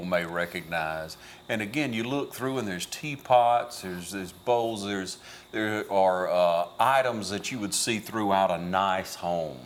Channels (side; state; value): both; identical; correlation 1.00